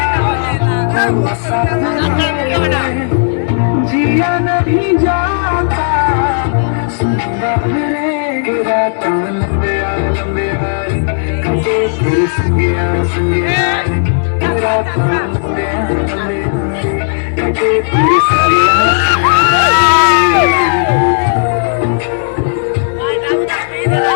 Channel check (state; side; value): silent; right; digital silence